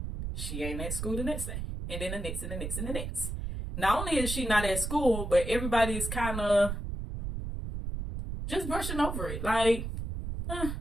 She ain't at school the next day. And then the next and the next and the next. Not only is she not at school, but everybody's kind of just brushing over it, like, and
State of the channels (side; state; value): right; noise; rumble, 5 dB below the sound